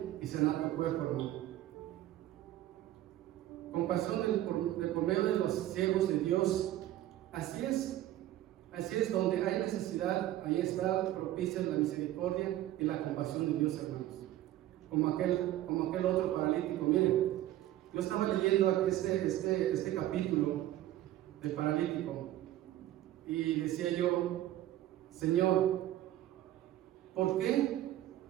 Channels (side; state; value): left; quieter; 14.0 dB